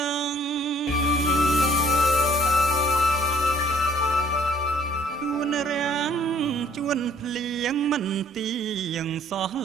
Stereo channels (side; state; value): both; normal; correlation 0.58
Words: ងជួនរាំងជួនភ្លៀងមិនទៀងសោះ